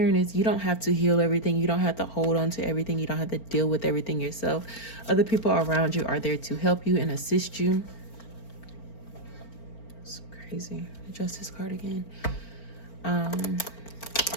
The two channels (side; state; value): right; late; 4.4 ms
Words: is you don't have to heal everything. You don't have to hold on to everything. You don't have to deal with everything yourself. Other people around you are there to help you and assist you. It's crazy. The Justice card again.